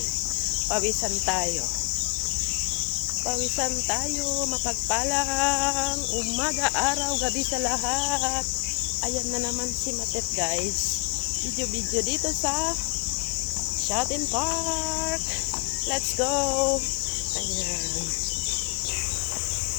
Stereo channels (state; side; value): quieter; right; 32.4 dB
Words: Pawisan tayo. Pawisan tayo. Mapagpalang umaga, araw, gabi sa lahat. Ayan na naman si Matet guys. Video dito sa Shopping Park. Let's go. Ayan.